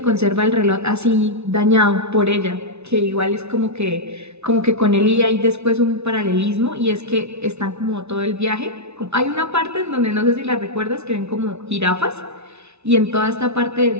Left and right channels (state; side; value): late; left; 0.81 ms